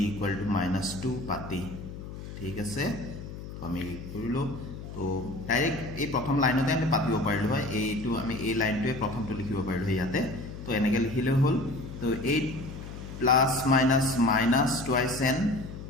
equal to -2 পাতি ঠিক আছে তো আমি কৰিলো তো ডাইৰেক্ট এই প্ৰথম লাইনতে আমি পাতিব পাৰিলো হয় এইটো আমি এই লাইনটোৱে প্ৰথমটো লিখিব পাৰিলো ইয়াতে তো এনেকে লিখিলে হল তো 8 plus minus minus twice n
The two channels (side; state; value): left; noise; hum, 11 dB below the sound